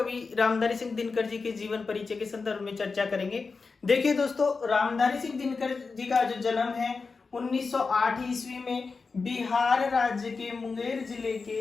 रामधारी सिंह दिनकर जी के जीवन परिचय के संदर्भ में चर्चा करेंगे। देखिए दोस्तों, रामधारी सिंह दिनकर जी का जो जन्म है 1908 ईस्वी में बिहार राज्य के मुंगेर जिले के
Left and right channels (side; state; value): right; quieter; 4.5 dB